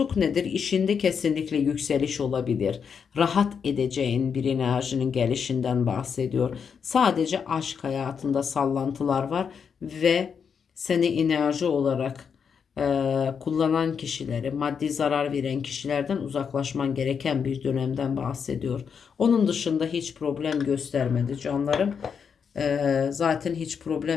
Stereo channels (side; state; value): right; quieter; 6.7 dB